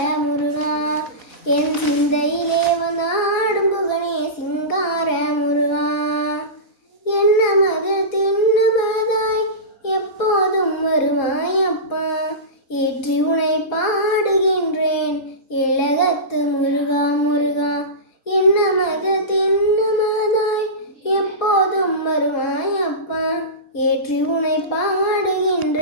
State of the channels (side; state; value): right; late; 4.2 ms